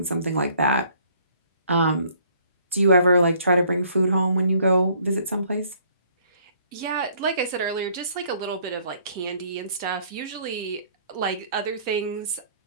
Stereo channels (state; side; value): inverted; both; correlation -0.61